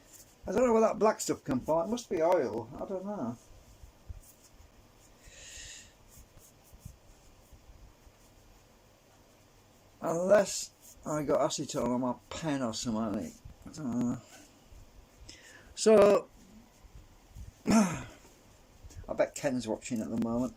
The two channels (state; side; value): identical; both; correlation 1.00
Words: I don't know where that black stuff comes from. It must be oil. I don't know. Unless I got acetone on my pen or something. I don't know. So, I bet Ken's watching at the moment.